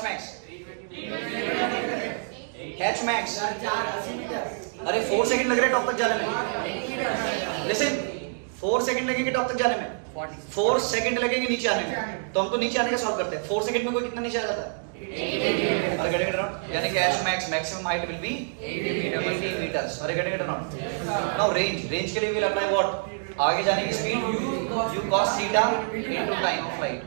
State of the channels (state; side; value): silent; left; digital silence